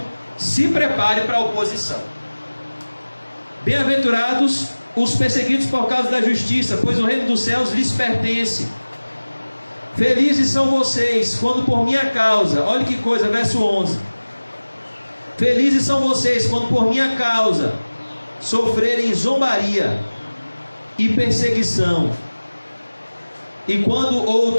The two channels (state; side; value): inverted; both; correlation -1.00